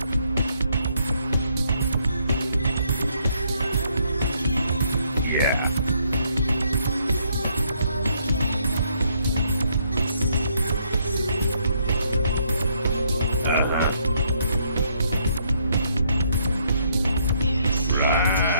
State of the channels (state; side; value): inverted; both; correlation -0.71